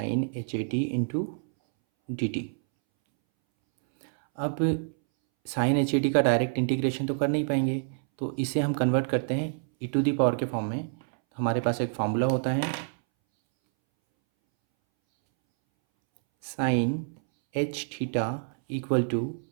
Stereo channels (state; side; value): silent; left; 60 dB below the other